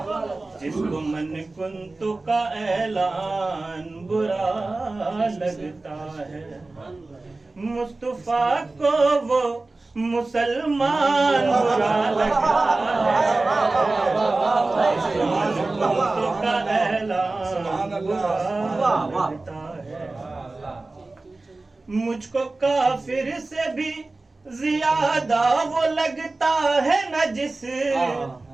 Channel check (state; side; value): quieter; left; 3.2 dB